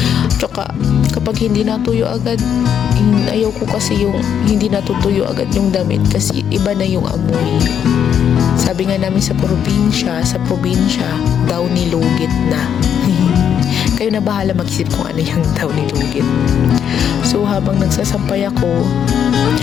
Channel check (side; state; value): right; quieter; 8.5 dB